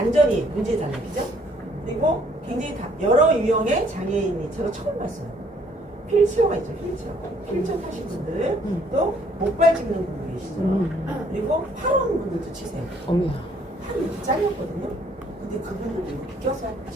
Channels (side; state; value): both; normal; correlation 0.63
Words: 문제잖아요. 그죠? 그리고 굉장히 여러 유형의 장애인이 제가 처음 봤어요. 휠체어가 있죠. 휠체어 타신 분들 또 목발 짚는 분들 계시죠. 그리고 팔원 분들도 치세요. 어머야. 팔이 이렇게 잘렸거든요. 근데 그분들도 이렇게 껴서